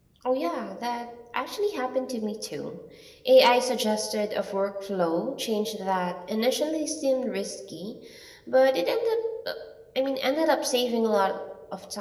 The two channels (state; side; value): identical; both; correlation 1.00